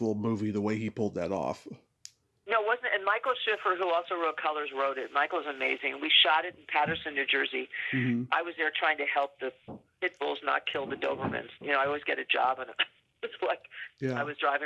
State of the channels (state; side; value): identical; both; correlation 1.00